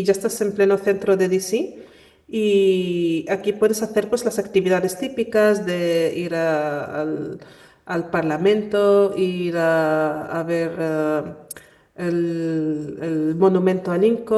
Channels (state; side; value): identical; both; correlation 1.00